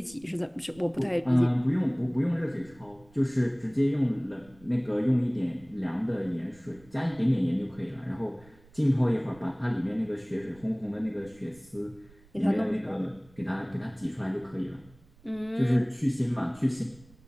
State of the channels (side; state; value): right; noise; rumble, 26 dB below the sound